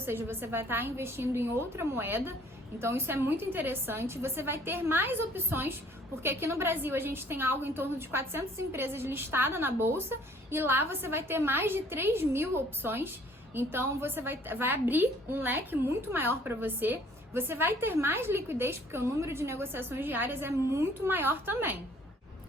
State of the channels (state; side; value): normal; both; correlation 0.58